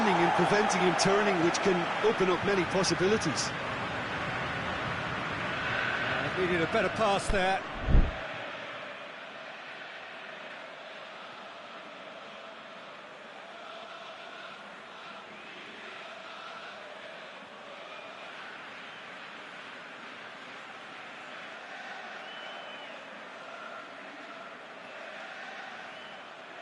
and preventing him turning, which can open up many possibilities. Needed a better pass there.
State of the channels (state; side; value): identical; both; correlation 1.00